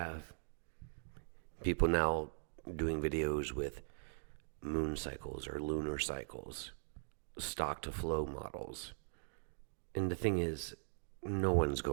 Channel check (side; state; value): left; silent; digital silence